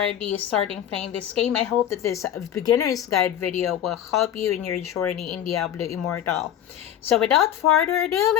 starting playing this game, I hope that this beginner's guide video will help you in your journey in Diablo Immortal. So without further ado,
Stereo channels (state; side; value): quieter; right; 10.6 dB